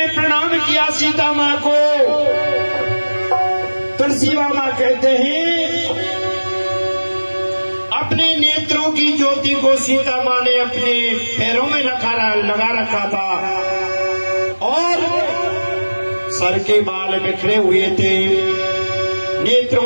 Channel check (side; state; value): both; inverted; correlation -1.00